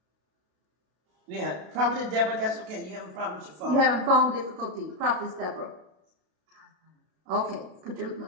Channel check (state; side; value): late; left; 32 ms